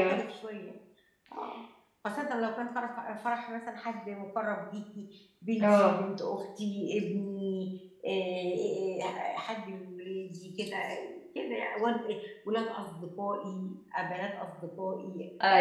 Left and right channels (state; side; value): identical; both; correlation 1.00